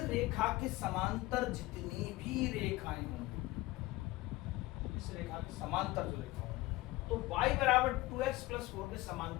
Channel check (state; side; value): quieter; right; 18.9 dB